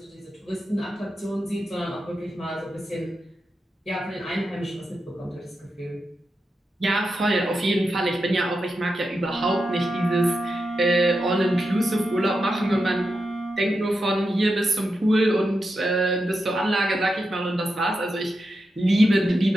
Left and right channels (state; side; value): normal; both; correlation 0.88